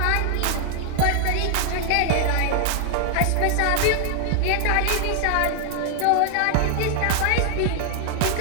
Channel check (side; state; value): both; different; correlation 0.00